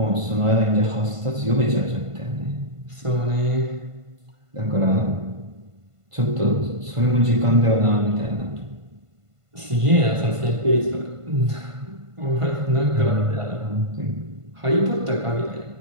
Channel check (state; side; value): late; left; 1.5 ms